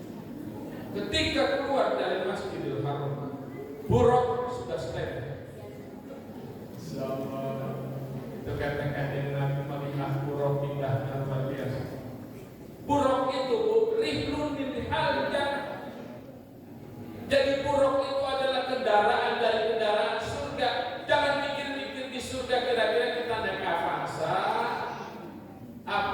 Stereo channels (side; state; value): both; identical; correlation 1.00